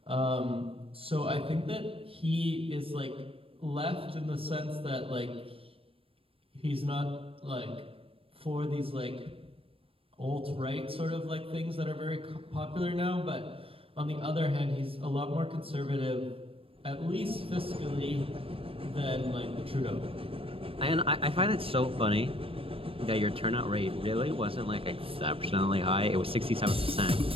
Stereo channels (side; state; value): left; late; 0.27 ms